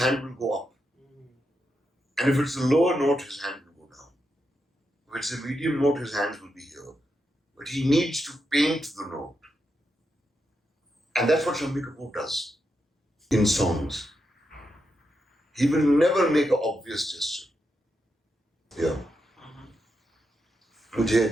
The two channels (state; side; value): normal; both; correlation 0.85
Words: will go up. And if it's a lower note, his hand will go down. If it's a medium note, his hands will be here. But he needs to paint the note. And that's what Shammi Kapoor does in songs. He will never make an obvious gesture. Yeah.